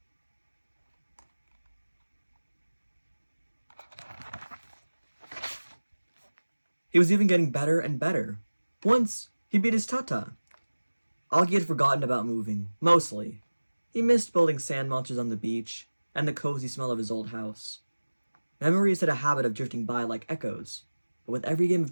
He was even getting better and better. Once, he beat his Tata. Auggie had forgotten about moving, mostly. He missed building sand monsters on the beach, and the cozy smell of his old house. Memories had a habit of drifting by like echoes, but with every game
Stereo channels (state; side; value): inverted; both; correlation -1.00